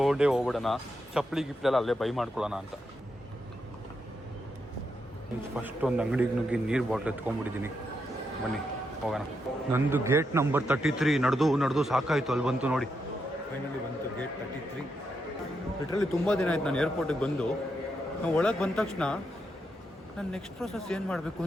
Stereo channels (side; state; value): both; normal; correlation 0.82